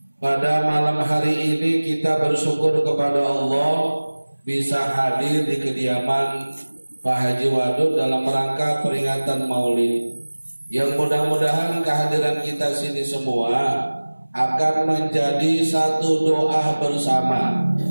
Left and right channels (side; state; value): both; inverted; correlation -1.00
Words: Pada malam hari ini kita bersyukur kepada Allah bisa hadir di kediaman Pak Haji Wadud dalam rangka peringatan Maulid, yang mudah-mudahan kehadiran kita sini semua akan menjadi satu doa bersama.